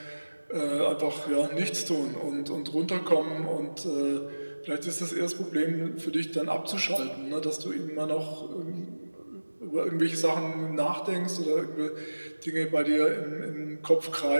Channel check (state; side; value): inverted; both; correlation -1.00